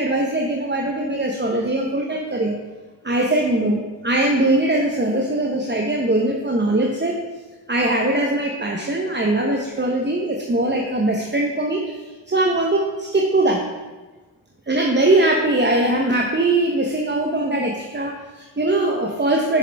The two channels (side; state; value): both; normal; correlation 0.22